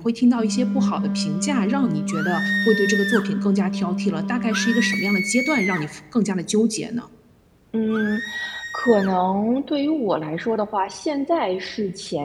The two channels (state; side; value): identical; both; correlation 1.00